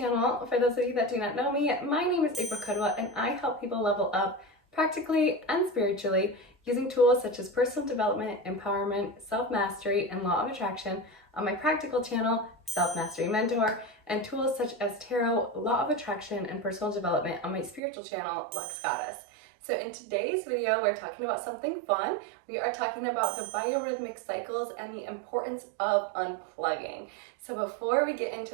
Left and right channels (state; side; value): drops out; left; at 17.8 s